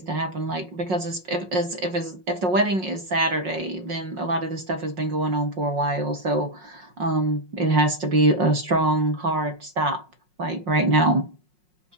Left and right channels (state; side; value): late; left; 5.5 ms